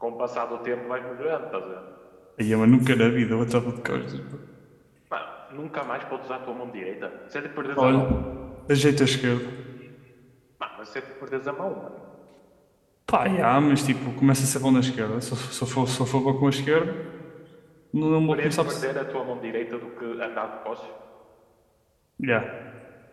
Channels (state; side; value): identical; both; correlation 1.00